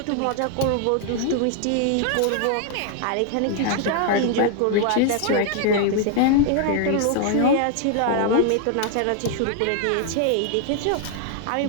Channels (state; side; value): different; both; correlation 0.00